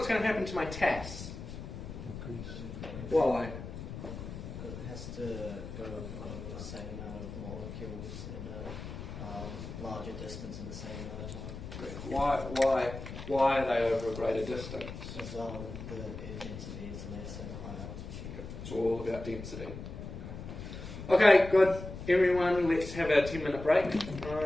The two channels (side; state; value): left; noise; rumble, 9 dB below the sound